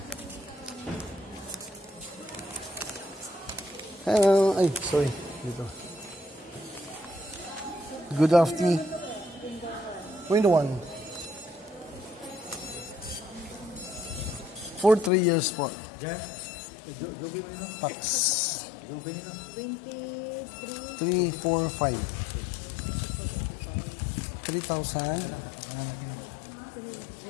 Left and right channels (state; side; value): drops out; right; at 15.1 s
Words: Hello, ay, sorry. Dito. Good afternoon. Window 1. For 3 years po. Tax. 23. 3, 4, 5. 3,000.